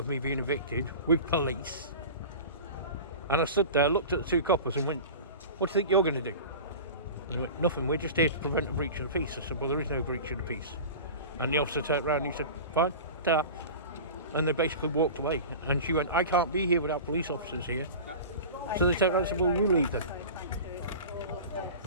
me being evicted with police. And I stood there, looked at the 2 coppers and went, what do you think you're going to do? And they went, nothing, we're just here to prevent a breach of the peace. I said, well, there is no breach of the peace. And the officer turned around and he said, fine, ta. And they basically walked away. And she went, I can't be here without police officers here. So they turned around and said, well, you leave then.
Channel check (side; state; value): both; inverted; correlation -0.34